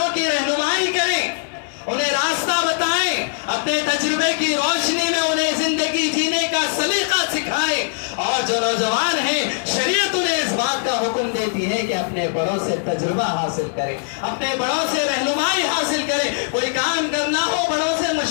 کی رہنمائی کریں، انہیں راستہ بتائیں، اپنے تجربے کی روشنی میں انہیں زندگی جینے کا سلیقہ سکھائیں، اور جو نوجوان ہیں شریعت انہیں اس بات کا حکم دیتی ہے کہ اپنے بڑوں سے تجربہ حاصل کریں، اپنے بڑوں سے رہنمائی حاصل کریں، کوئی کام کرنا ہو بڑوں سے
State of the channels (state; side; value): silent; right; digital silence